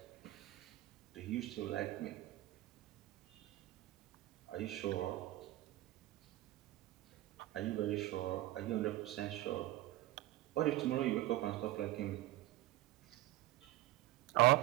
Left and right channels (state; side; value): quieter; left; 16.1 dB